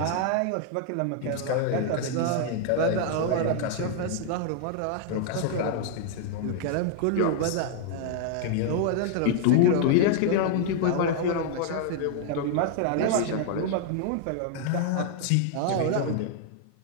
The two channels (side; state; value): both; different; correlation 0.00